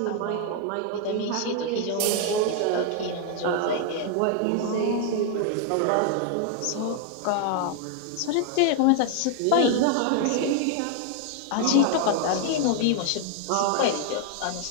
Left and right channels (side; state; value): both; different; correlation 0.00